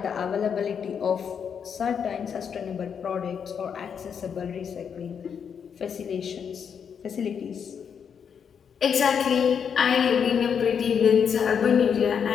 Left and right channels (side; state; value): right; quieter; 7.2 dB